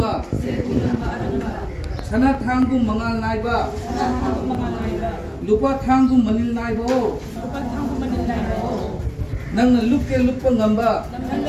सना थांगुम मंगाल नाइबा लुपा थांगुम Manil नाइबो नंगना लुपके लुपा ngamba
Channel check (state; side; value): identical; both; correlation 1.00